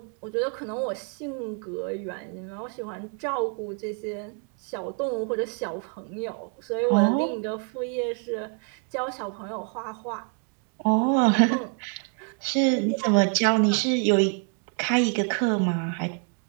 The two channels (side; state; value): left; quieter; 37.0 dB